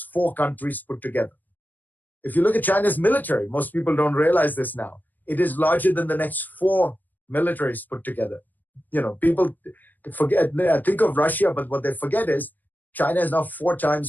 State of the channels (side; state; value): right; late; 0.087 ms